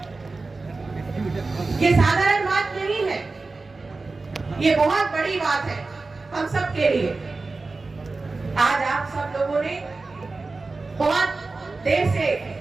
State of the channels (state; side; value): quieter; left; 3.7 dB